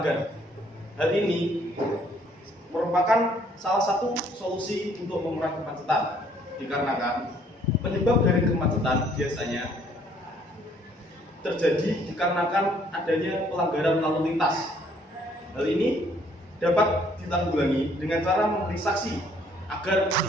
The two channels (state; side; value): normal; both; correlation 0.63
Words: Hal ini merupakan salah satu solusi untuk mengurangi kemacetan, dikarenakan penyebab dari kemacetan biasanya terjadi dikarenakan adanya pelanggaran lalu lintas. Hal ini dapat ditanggulangi dengan cara memberi saksi agar